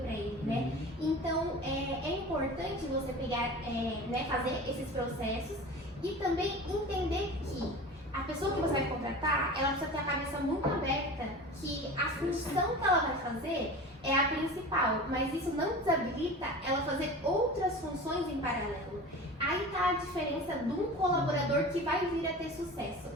ele, né? Então é importante você pegar, né, fazer esses processos e também entender que a pessoa que você vai contratar, ela precisa ter a cabeça muito aberta que a função que ela vai fazer é a principal, mas isso não desabilita ela fazer outras funções em paralelo. Aí tá a diferença de um colaborador que vai vir a ter sucesso.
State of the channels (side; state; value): both; normal; correlation 0.35